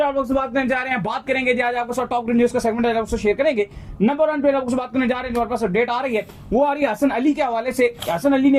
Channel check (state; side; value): identical; both; correlation 1.00